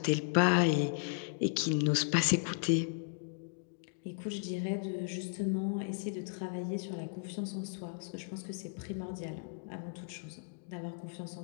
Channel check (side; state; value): right; silent; digital silence